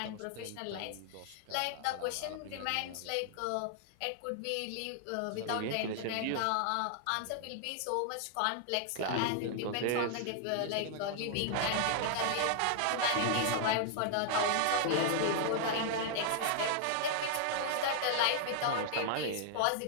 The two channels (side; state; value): both; different; correlation -0.01